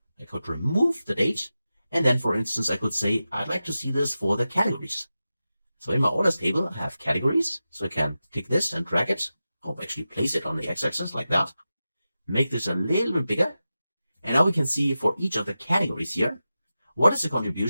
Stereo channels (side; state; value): both; inverted; correlation -0.93